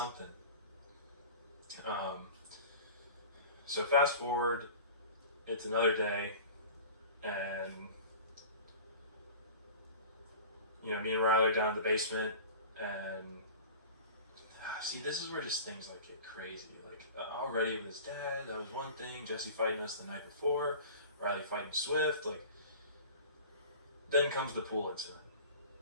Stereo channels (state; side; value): inverted; both; correlation -0.38